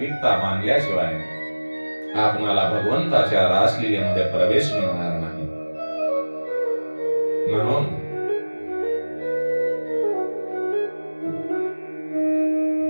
मानल्याशिवाय आपणाला भगवंताच्या रासलीलेमध्ये प्रवेश मिळणार नाही. म्हणून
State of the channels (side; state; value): both; inverted; correlation -1.00